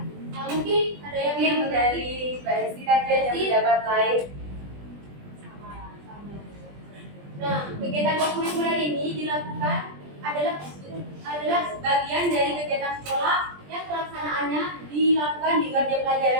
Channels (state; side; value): late; left; 20 ms